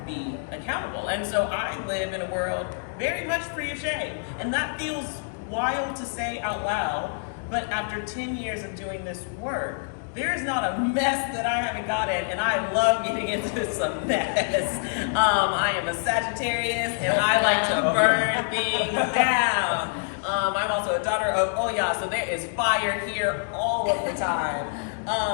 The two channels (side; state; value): right; silent; digital silence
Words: be accountable. And so I live in a world very much free of shame. And that feels wild to say out loud, but after 10 years of doing this work, there is not a mess that I haven't got in, and I love getting into some mess. I am a Sagittarius, and I like to burn things down. I'm also a daughter of Oya, so there is fire here all of the time.